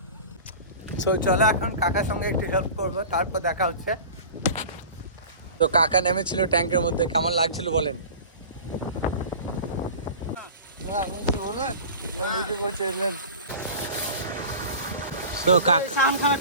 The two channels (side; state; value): both; inverted; correlation -0.37